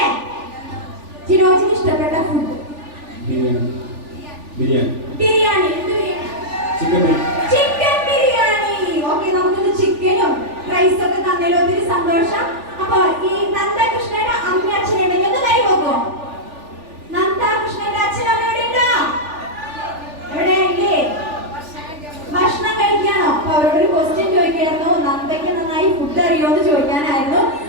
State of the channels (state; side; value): late; left; 3.4 ms